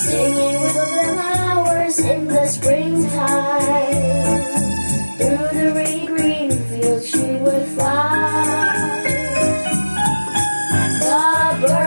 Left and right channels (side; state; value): both; inverted; correlation -1.00